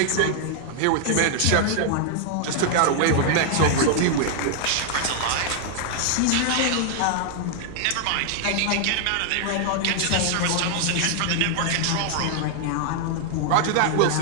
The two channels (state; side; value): different; both; correlation 0.00